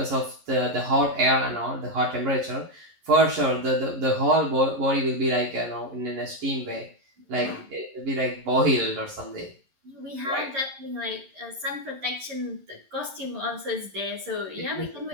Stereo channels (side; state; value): left; late; 11 ms